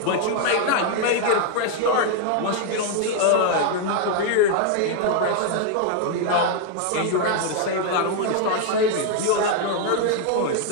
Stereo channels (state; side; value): different; both; correlation 0.00